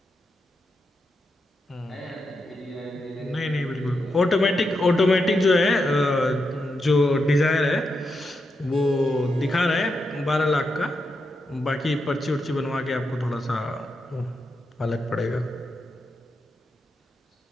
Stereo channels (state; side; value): normal; both; correlation 0.85